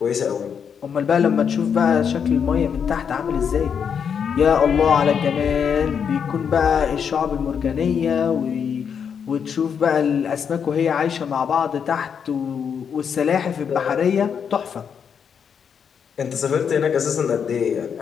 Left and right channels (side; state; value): right; quieter; 7.2 dB